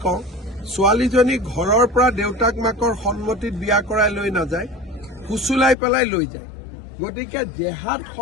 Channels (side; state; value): right; drops out; at 5.8 s